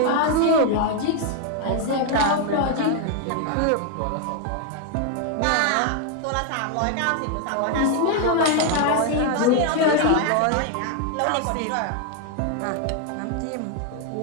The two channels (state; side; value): different; both; correlation 0.00